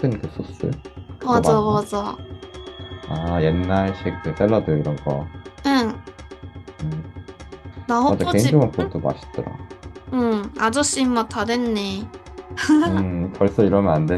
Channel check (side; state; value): both; identical; correlation 1.00